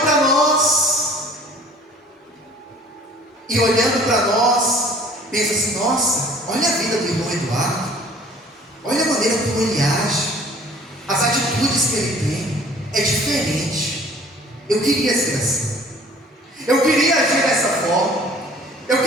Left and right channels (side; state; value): both; normal; correlation 0.52